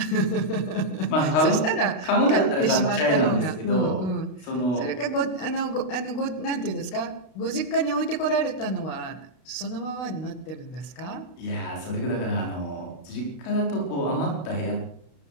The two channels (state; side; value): late; right; 32 ms